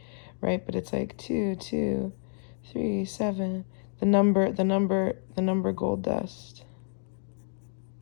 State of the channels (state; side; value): silent; right; 58 dB below the other